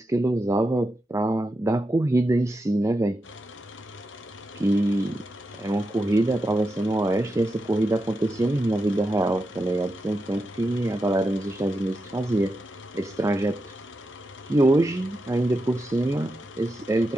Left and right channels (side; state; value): both; normal; correlation 0.87